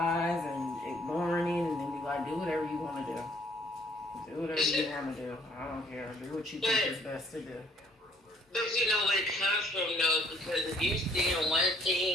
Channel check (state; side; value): normal; both; correlation 0.62